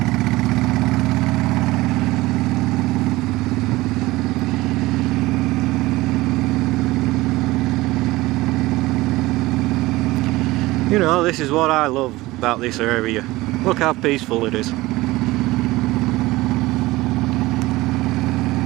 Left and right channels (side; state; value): left; quieter; 19.2 dB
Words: You know, this is what I love about this area. Look how peaceful it is.